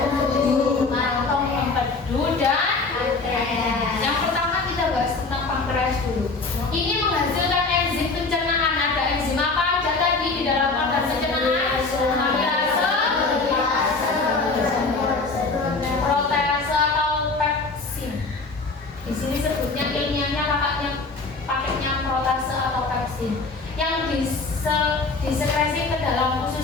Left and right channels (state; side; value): quieter; right; 3.9 dB